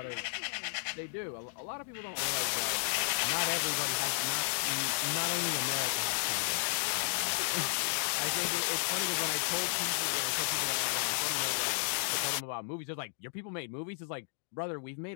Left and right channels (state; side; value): silent; right; digital silence